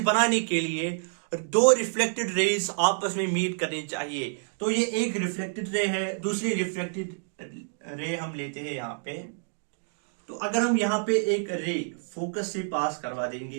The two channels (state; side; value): silent; left; digital silence